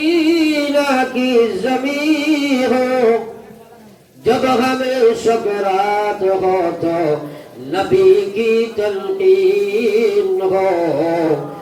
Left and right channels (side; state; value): both; identical; correlation 1.00